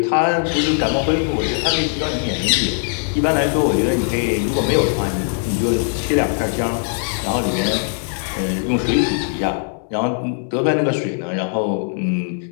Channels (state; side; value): silent; right; 63 dB below the other